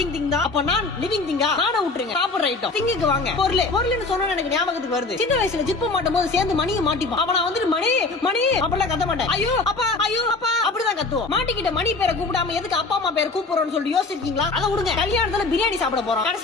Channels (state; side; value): quieter; right; 3.6 dB